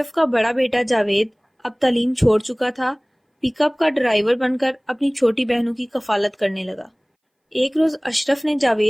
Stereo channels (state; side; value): identical; both; correlation 1.00